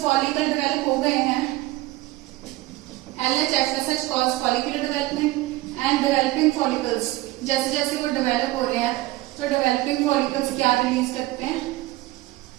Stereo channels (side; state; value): left; quieter; 18.5 dB